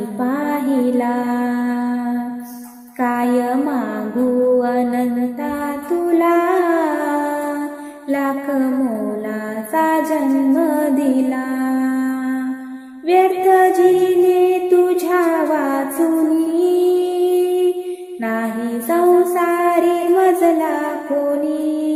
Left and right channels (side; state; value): both; identical; correlation 1.00